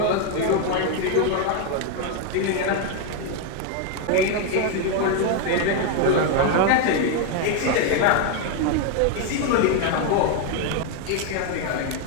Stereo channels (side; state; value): both; different; correlation 0.01